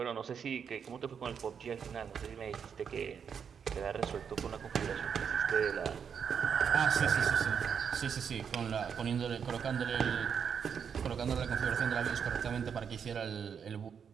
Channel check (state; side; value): quieter; left; 7.1 dB